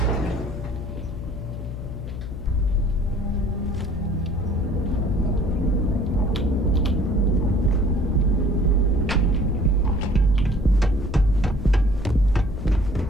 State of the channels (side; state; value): left; noise; hum, 8 dB below the sound